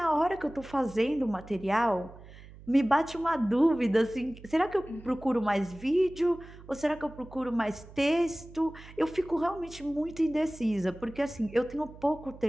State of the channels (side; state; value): right; noise; hum, 19 dB below the sound